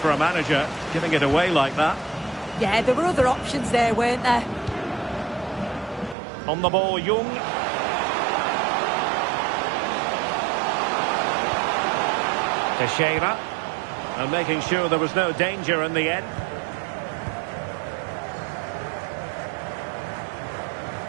a manager, giving it away like that. Yeah, there were other options there, weren't there? On the ball, Young. Teixeira. And making sure there was no danger in the end.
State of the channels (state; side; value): drops out; left; at 6.2 s